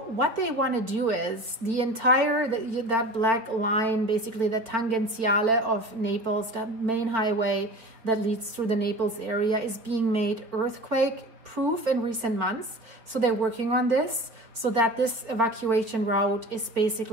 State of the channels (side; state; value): left; late; 4.2 ms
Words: what they want to do is the entire, that black line, basically the Tangenziale of Naples, that main highway that leads through the Naples area, is being made earthquake proof in recent months. So they're working on this so that this evacuation route is